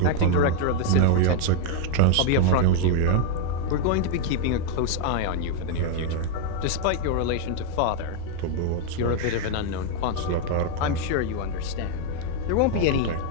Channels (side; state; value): both; different; correlation 0.00